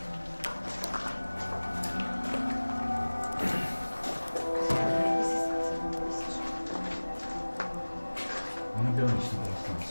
Non abbiamo visto quella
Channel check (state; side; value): inverted; both; correlation -1.00